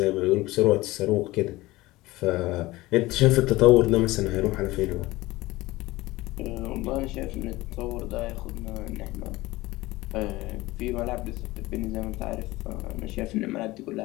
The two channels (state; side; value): quieter; right; 19.2 dB